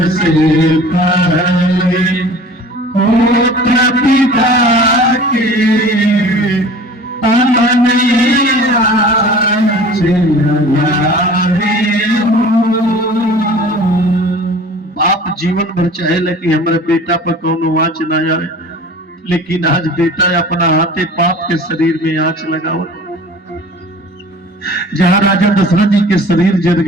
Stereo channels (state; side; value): normal; both; correlation 0.44